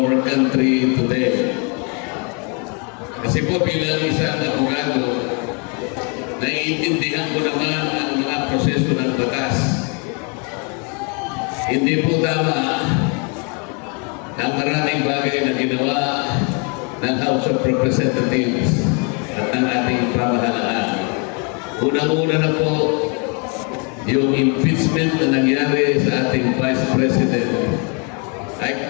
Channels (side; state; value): right; quieter; 35.5 dB